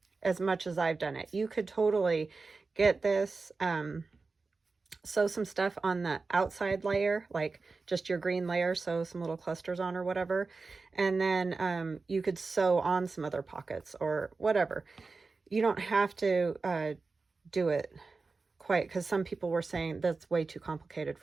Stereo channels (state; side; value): quieter; left; 4.1 dB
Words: as much as I've done it. You could totally get this, sew some stuff on the outside layer, like just your green layer, sew some little clusters on or whatever, and then you could sew on some other pockets or whatever. You don't have to do it quite, because some people were saying that's way too complicated